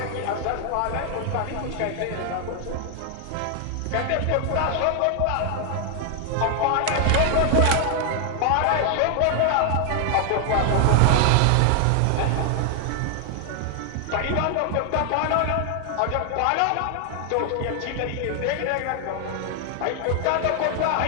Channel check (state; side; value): different; both; correlation 0.00